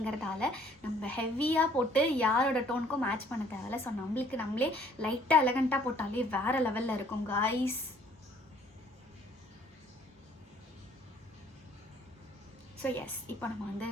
நம்ம ஹெவியாக போட்டு யாரோட டோனுக்கும் மேட்ச் பண்ண தேவையில்ல. ஸோ நம்மளுக்கு நம்மளே லைட்டாக எலகண்ட்டாக போட்டாலே வேறு லெவலில் இருக்கும் காய்ஸ். ஸோ எஸ், இப்போ நம்ம வந்து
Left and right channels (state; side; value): normal; both; correlation 0.60